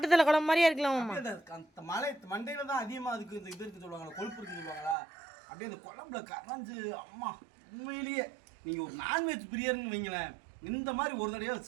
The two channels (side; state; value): left; drops out; at 5.0 s